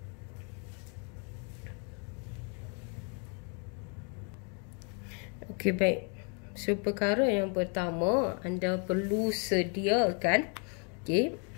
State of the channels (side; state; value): right; quieter; 38.0 dB